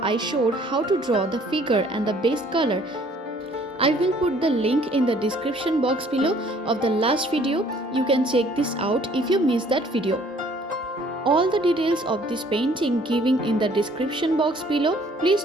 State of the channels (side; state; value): both; normal; correlation 0.58